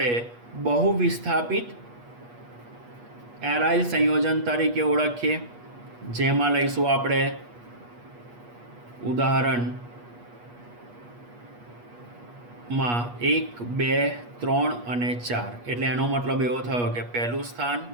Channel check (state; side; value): late; left; 8.3 ms